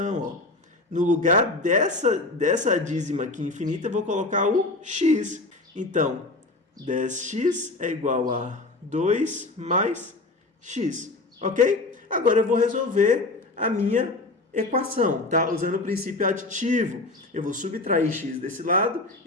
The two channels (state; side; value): quieter; right; 3.1 dB